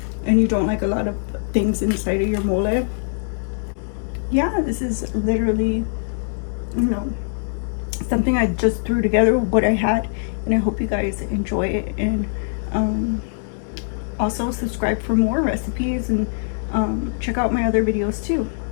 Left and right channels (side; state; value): right; silent; 64 dB below the other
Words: and you don't like a lot of things inside of your mole, yeah, this is literally, something I just threw together with what I had, and I hope you guys enjoy it. And also subscribe for more recipes, and check out my other videos too.